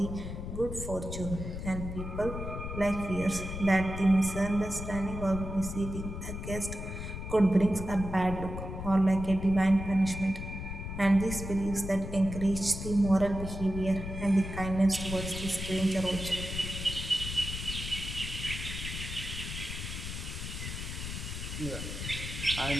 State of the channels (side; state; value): left; noise; rumble, 6 dB below the sound